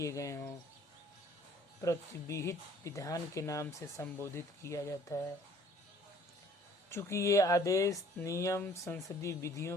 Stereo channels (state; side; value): normal; both; correlation 0.55